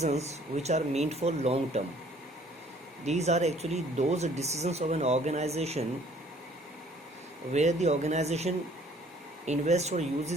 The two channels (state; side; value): normal; both; correlation 0.57